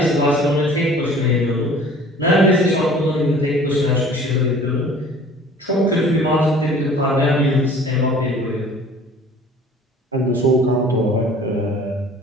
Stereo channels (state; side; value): normal; both; correlation 0.49